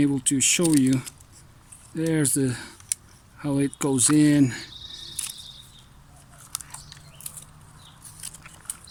to show you. There's the how it goes in.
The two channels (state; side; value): identical; both; correlation 1.00